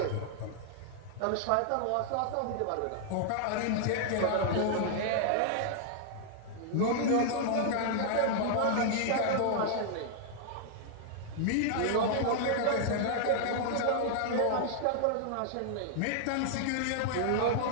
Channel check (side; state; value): both; different; correlation -0.01